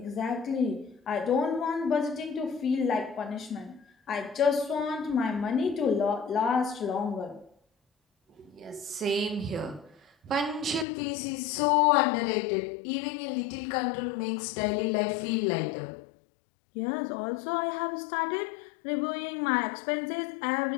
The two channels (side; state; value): right; drops out; at 10.9 s